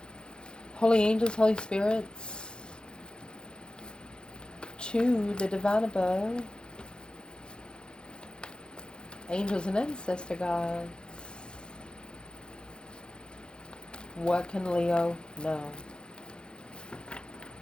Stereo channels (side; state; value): right; late; 0.049 ms